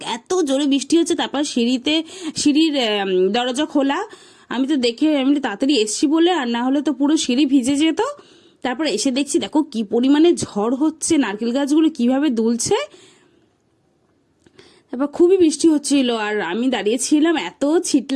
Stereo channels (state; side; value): identical; both; correlation 1.00